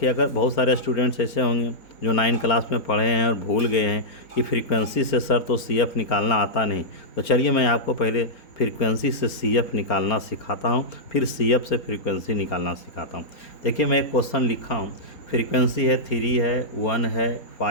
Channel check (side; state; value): right; late; 4.4 ms